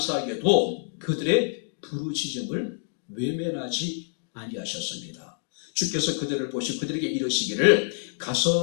그들의 부르짖음을 외면하지 아니하셨습니다. 주께서 그들을 보시고 그들에게 이르시기를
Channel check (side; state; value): right; silent; 60 dB below the other